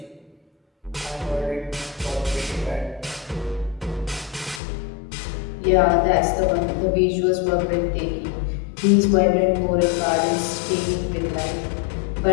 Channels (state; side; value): drops out; right; at 4.6 s